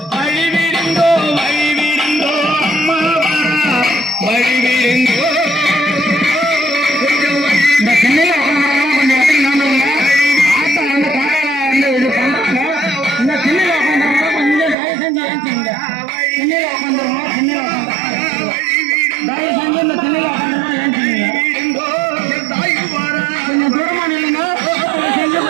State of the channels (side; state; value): left; drops out; at 14.8 s